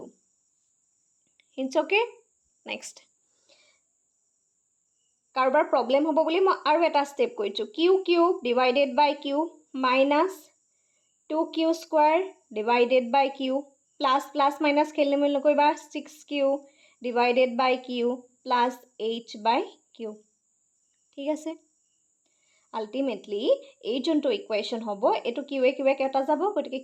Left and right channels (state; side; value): identical; both; correlation 1.00